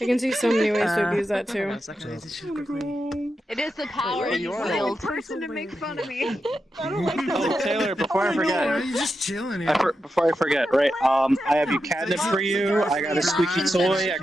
can see so many ways to abuse that too. Hold on a second, I need to shift quickly. It is the power Wait, you you're wield. person to make fun of me. Oh, Taylor, before I forget, You're just chilling here. before I forget, right? I have you catnip for you. I got a squeaky toy. I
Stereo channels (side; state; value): both; normal; correlation 0.88